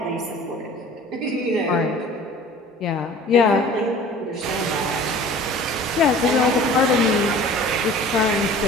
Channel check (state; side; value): normal; both; correlation 0.45